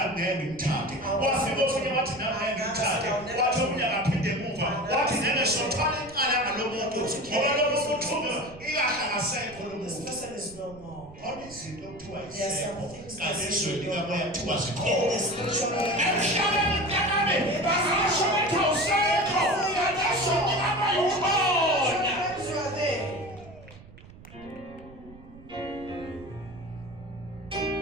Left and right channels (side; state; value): right; noise; rumble, 20 dB below the sound